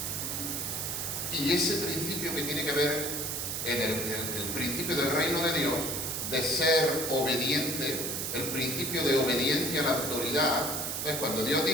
Y ese principio que tiene que ver en el principio del reino de Dios, de ser obediente, el principio de obediencia a la autoridad, pues cuando Dios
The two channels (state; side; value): noise; right; hiss, 2 dB below the sound